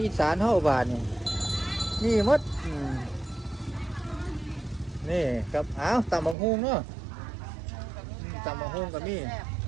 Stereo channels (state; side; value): drops out; left; at 6.4 s